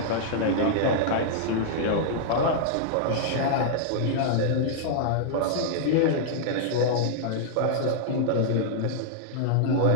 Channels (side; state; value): both; different; correlation -0.01